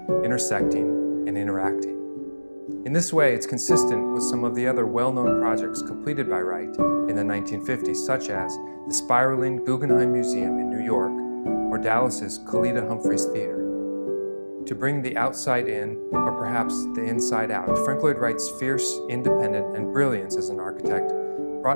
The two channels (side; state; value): both; inverted; correlation -1.00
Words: intersecting and interacting. In this way, it's consistent with some of the other well-known projects completed by Wright in the 1950s, such as the spiraling Guggenheim Museum in New York or Dallas's Kalita Humphreys Theater. To bring the outside in, or perhaps the inside out, Frank Lloyd Wright's fierce, independent, and brilliance as an architect